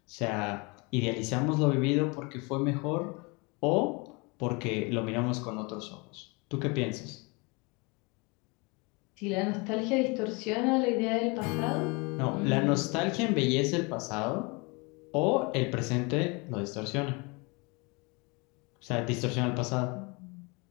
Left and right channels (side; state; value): right; quieter; 28.7 dB